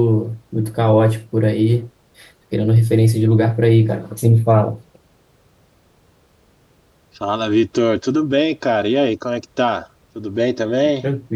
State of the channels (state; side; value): identical; both; correlation 1.00